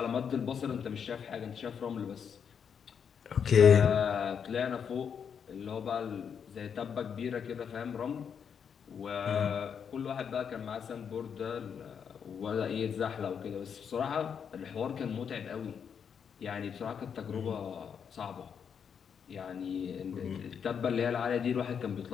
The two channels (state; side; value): quieter; right; 7.3 dB